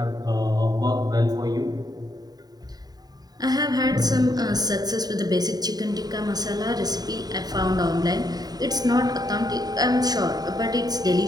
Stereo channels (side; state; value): left; late; 0.19 ms